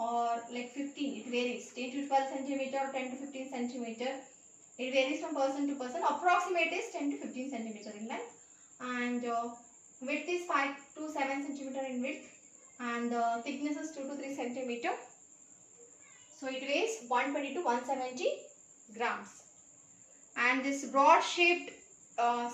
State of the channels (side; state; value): both; identical; correlation 1.00